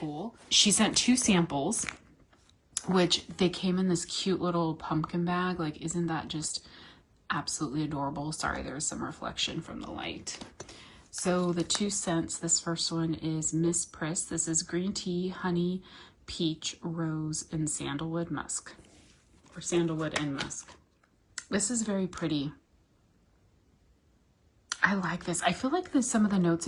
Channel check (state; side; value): identical; both; correlation 1.00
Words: She sent 2 samples, which they came in this cute little pumpkin bag. Like, isn't that just absolutely adorable? Sorry, there's some reflection from the light. So the 2 scents, this first one is Miss Priss. This is green tea, honey, peach, rose, and sandalwood musk, or sandalwood and musk. This is very pretty. I like this. I feel like there's some of the notes